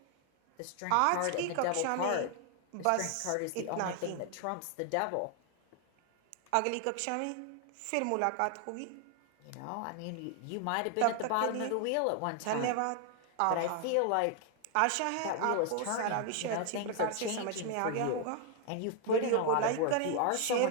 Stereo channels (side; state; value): both; different; correlation 0.00